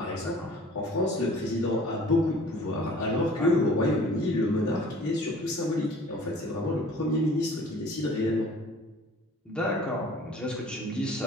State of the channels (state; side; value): normal; both; correlation 0.49